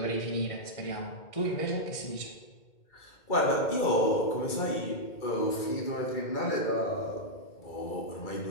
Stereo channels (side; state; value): right; late; 2.1 ms